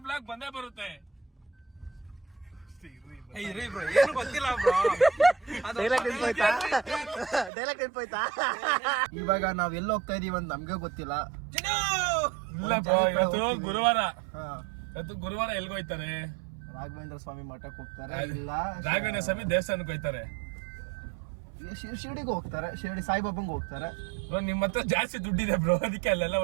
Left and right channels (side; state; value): left; drops out; at 7.5 s